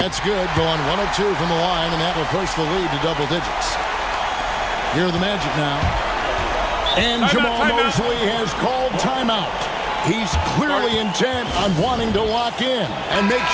good. Going 1 of 2 from the line, and that will push the lead to double digits. Here are the Magic now. And Jamal Mosley has called timeout. He's clearly intent on wanting to lock in and make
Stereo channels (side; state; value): both; identical; correlation 1.00